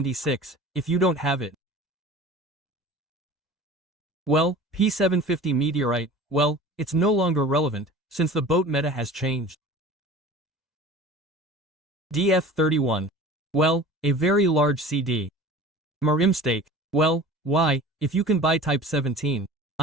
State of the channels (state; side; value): normal; both; correlation 0.40